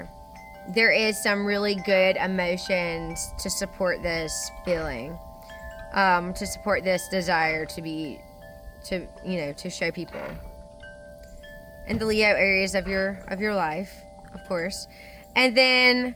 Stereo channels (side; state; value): both; identical; correlation 1.00